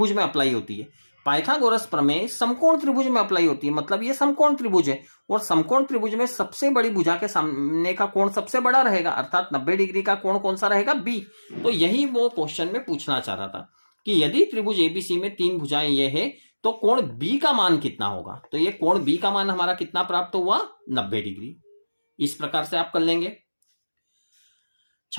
में अप्लाई होती है? पाइथागोरस प्रमेय समकोण त्रिभुज में अप्लाई होती है। मतलब ये समकोण त्रिभुज है और समकोण त्रिभुज में सबसे बड़ी भुजा के सामने का कोण सबसे बड़ा रहेगा, अर्थात 90 डिग्री का कोण कौन सा रहेगा? B। तो यही वो क्वेश्चन में पूछना चाह रहा था कि यदि त्रिभुज ABC में 3 भुजाएं ये है तो कोण B का मान कितना होगा? तो ये कोण B का मान हमारा कितना प्राप्त हुआ? 90 डिग्री। इस प्रकार से आप कर लेंगे।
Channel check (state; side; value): inverted; both; correlation -1.00